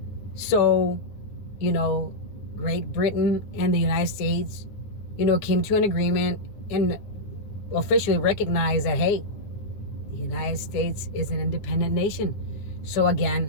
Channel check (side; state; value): right; late; 9.8 ms